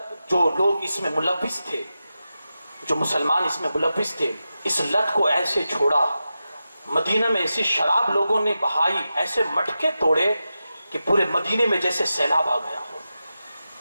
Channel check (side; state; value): both; inverted; correlation -0.91